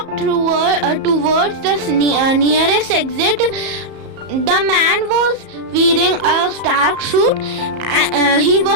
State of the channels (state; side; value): late; left; 34 ms